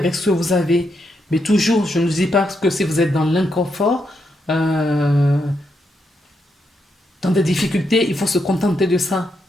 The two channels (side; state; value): both; normal; correlation 0.81